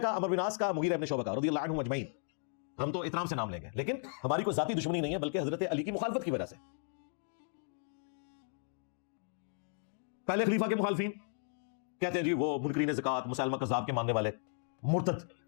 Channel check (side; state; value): right; silent; digital silence